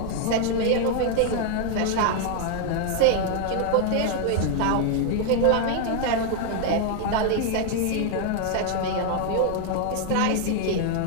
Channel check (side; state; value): both; different; correlation 0.00